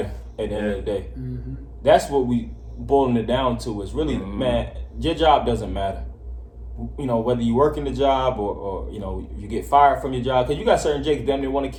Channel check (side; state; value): both; identical; correlation 1.00